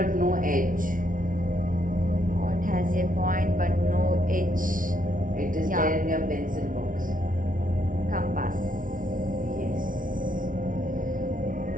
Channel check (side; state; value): left; late; 0.39 ms